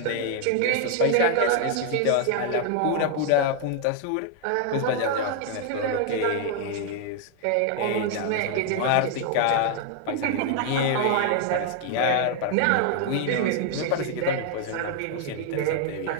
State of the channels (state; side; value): different; both; correlation 0.00